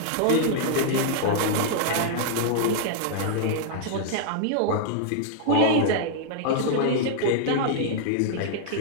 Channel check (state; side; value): different; both; correlation -0.01